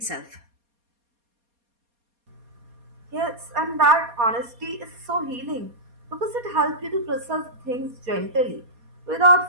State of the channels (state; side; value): late; left; 4.2 ms